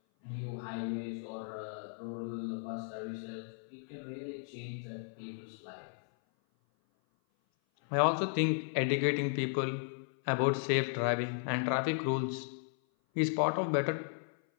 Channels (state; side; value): silent; right; 54 dB below the other